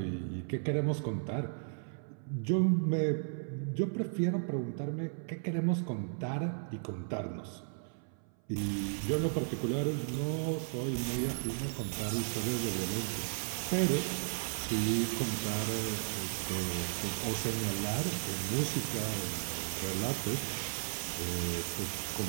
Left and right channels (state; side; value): silent; left; 54 dB below the other